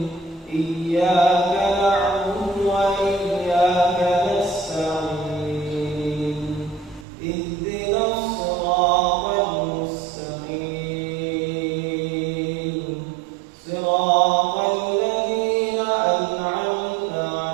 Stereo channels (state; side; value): drops out; left; at 7.1 s